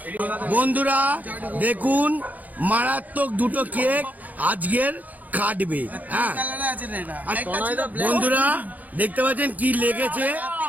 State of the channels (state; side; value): late; left; 0.080 ms